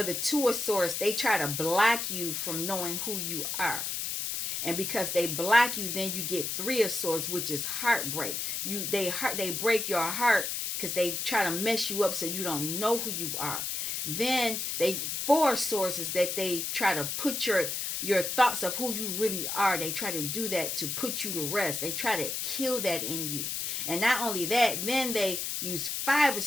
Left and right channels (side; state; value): left; noise; hiss, 2 dB below the sound